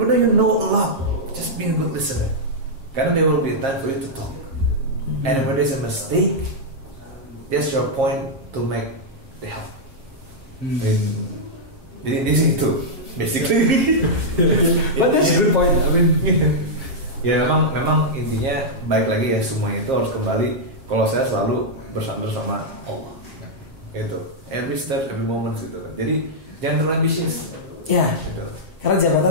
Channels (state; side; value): late; left; 7.4 ms